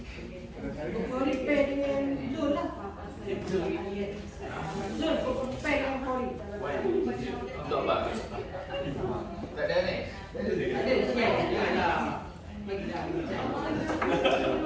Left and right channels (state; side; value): identical; both; correlation 1.00